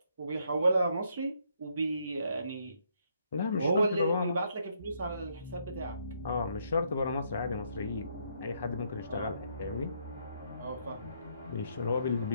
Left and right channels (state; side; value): inverted; both; correlation -0.72